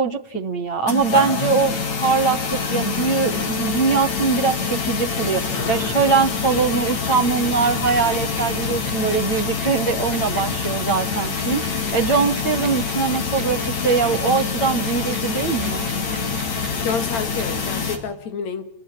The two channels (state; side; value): late; right; 8.8 ms